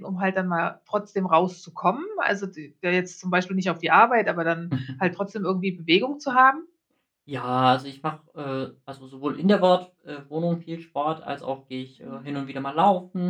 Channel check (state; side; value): identical; both; correlation 1.00